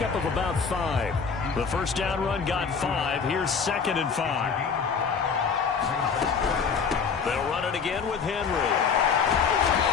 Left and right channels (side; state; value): right; quieter; 5.9 dB